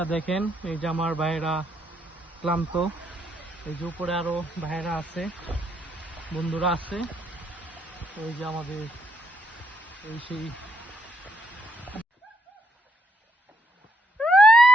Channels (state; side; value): normal; both; correlation 0.74